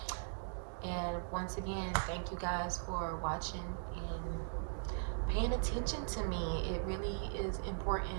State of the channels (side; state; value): left; silent; digital silence